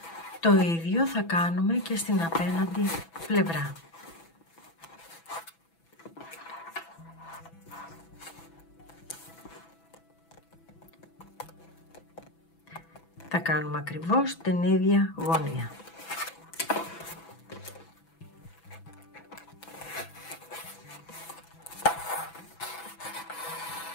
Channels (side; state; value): right; late; 6.0 ms